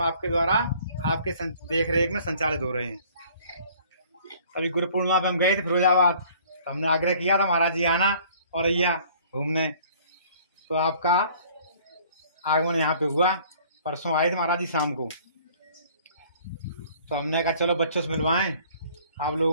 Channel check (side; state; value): both; inverted; correlation -0.54